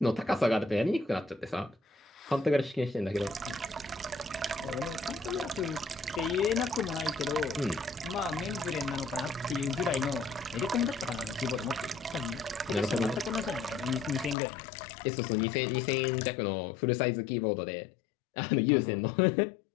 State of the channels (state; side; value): drops out; right; at 14.4 s